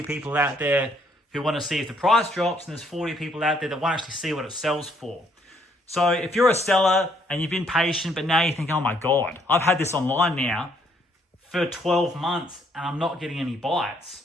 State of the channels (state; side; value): normal; both; correlation 0.68